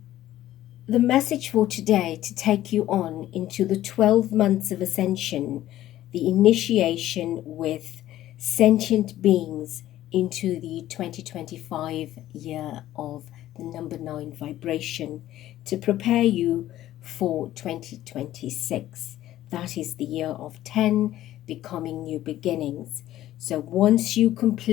the message for today, to take you on into the 12 months of Ascension, the initiation with sentient beings into the 2025 year of the number 9 vibration, to prepare you for 2026. That is the year of 10, becoming new beginnings. So once you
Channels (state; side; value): quieter; right; 13.8 dB